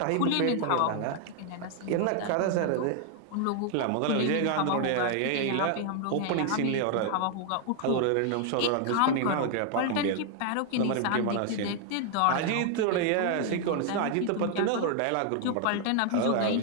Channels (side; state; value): both; different; correlation 0.00